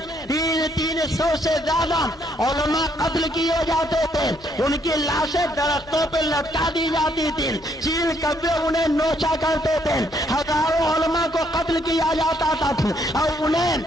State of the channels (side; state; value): both; normal; correlation 0.70